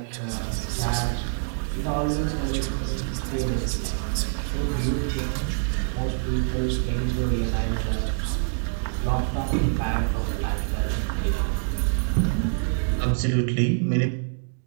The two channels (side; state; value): left; silent; digital silence